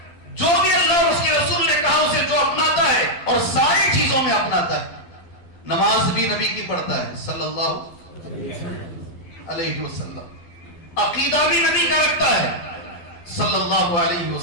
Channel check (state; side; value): late; right; 12 ms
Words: جو بھی اللہ اور اس کے رسول نے کہا اسے جو اپناتا ہے اور ساری چیزوں میں اپناتا ہے. نماز بھی نبی کی پڑھتا ہے صلی اللہ علیہ وسلم، عقیدہ بھی نبی کا رکھتا ہے صلی اللہ علیہ